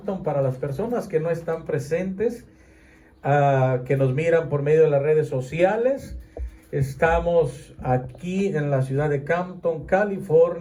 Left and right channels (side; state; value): both; identical; correlation 1.00